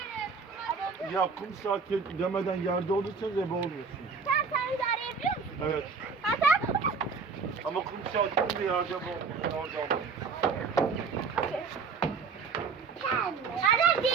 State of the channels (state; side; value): quieter; left; 5.2 dB